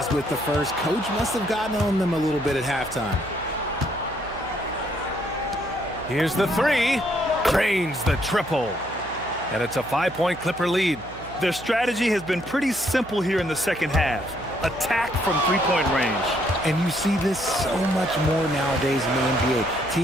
with the first. Coach must have gotten on them a little bit at halftime. Here's the 3. Drains the triple. And it's a 5-point Clipper lead. Their strategy has been pretty simple here in the second half. Attack from three-point range. And you see this so much more nowadays in the NBA.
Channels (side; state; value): right; noise; hum, 17 dB below the sound